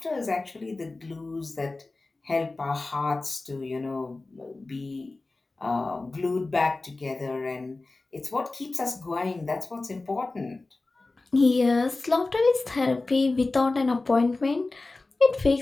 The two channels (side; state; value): right; quieter; 3.3 dB